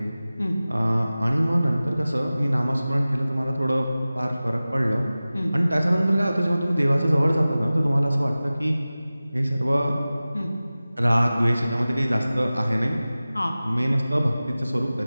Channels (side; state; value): both; inverted; correlation -0.97